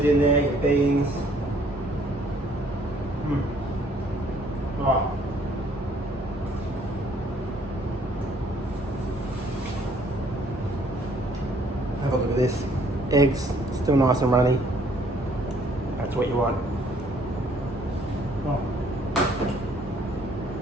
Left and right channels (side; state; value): both; normal; correlation 0.62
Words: in there, your beans. Right. Have a look at this. Eggs, still nice and runny. That's what you want.